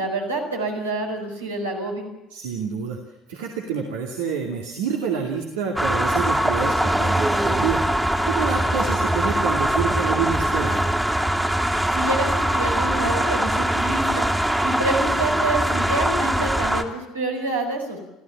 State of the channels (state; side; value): normal; both; correlation 0.73